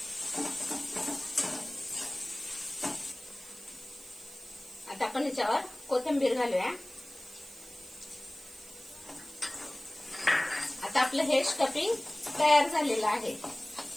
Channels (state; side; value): noise; right; hiss, 18 dB below the sound